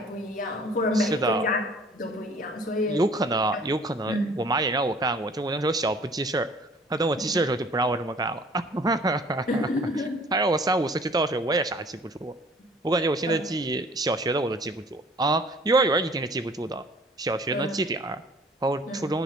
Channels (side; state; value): both; normal; correlation 0.53